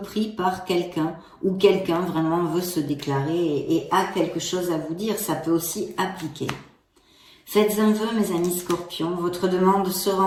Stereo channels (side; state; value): both; identical; correlation 1.00